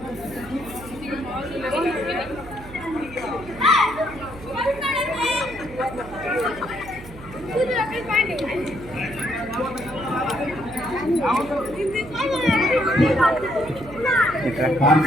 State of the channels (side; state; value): right; noise; hum, 16 dB below the sound